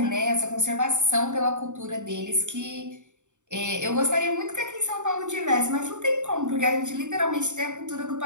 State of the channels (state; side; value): late; left; 0.85 ms